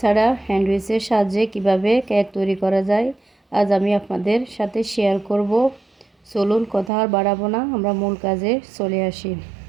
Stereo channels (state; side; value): drops out; left; at 6.9 s